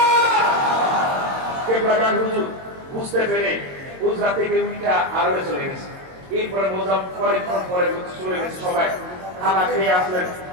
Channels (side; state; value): left; late; 22 ms